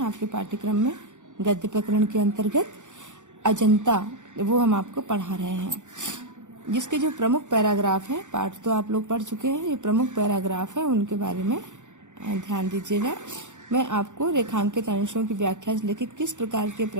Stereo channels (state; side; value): late; left; 0.85 ms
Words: पाठ्यक्रम में गद्य प्रकरण के अंतर्गत अजंता, वो हम आपको पढ़ा रहे हैं। जिसके जो प्रमुख पैराग्राफ है, पाठ तो आप लोग पढ़ चुके हैं, ये प्रमुख पैराग्राफ है, उनके बारे में ध्यान दीजिएगा। मैं आपको रेखांकित अंशों की व्याख्या से लेकर किस प्रकार के